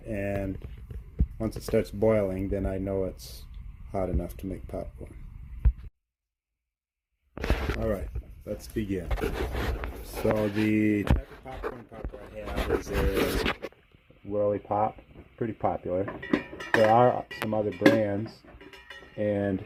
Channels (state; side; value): identical; both; correlation 1.00